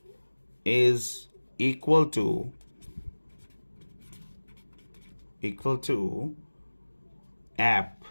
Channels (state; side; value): inverted; both; correlation -1.00